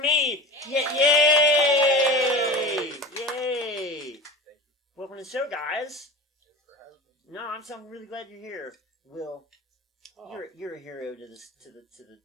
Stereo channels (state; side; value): normal; both; correlation 0.33